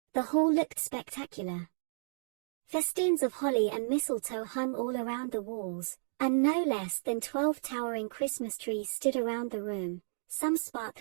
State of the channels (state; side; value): silent; left; digital silence